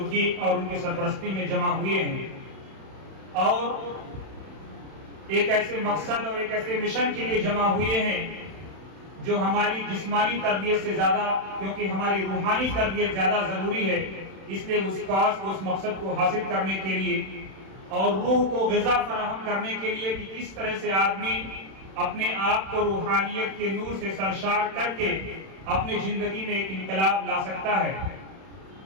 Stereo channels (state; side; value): late; left; 31 ms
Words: اور ان کی سرپرستی میں جمع ہوئے ہیں، اور ایک ایسے مقصد اور ایک ایسے مشن کے لیے جمع ہوئے ہیں جو ہماری جسمانی تربیت سے زیادہ، کیونکہ ہماری روحانی تربیت زیادہ ضروری ہے، اس لیے اس کاز کو، اس مقصد کو حاصل کرنے کے لیے اور روح کو غذا فراہم کرنے کے لیے کہ کس طرح سے آدمی اپنے آپ کو روحانیت کے نور سے سرشار کر کے اپنی زندگی میں ایک انقلاب لا سکتا ہے.